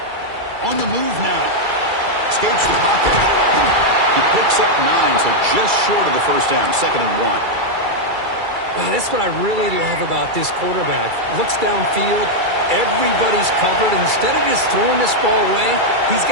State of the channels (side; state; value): left; late; 2.3 ms